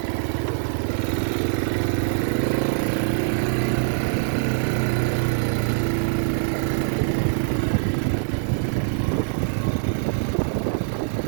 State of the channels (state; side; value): silent; left; digital silence